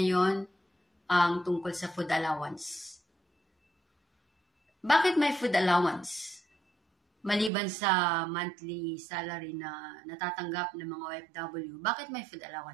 ang tungkol sa food allowance. Bakit may food allowance? Maliban sa monthly salary na natatanggap ng mga OFW, bakit may food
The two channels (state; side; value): drops out; left; at 7.5 s